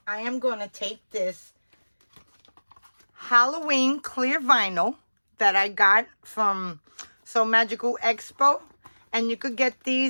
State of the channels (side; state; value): both; inverted; correlation -1.00